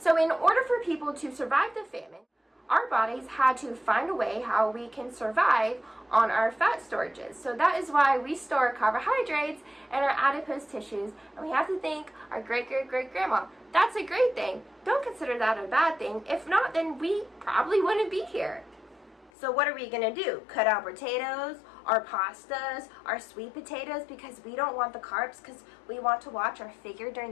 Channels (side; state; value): right; drops out; at 19.3 s